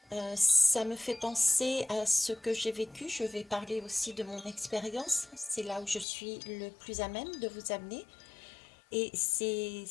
Ça me fait penser à ce que j'ai vécu. Je vais parler aussi de mon expérience. C'est là où je suis le plus à même de vous amener. Et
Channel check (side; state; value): right; drops out; at 6.1 s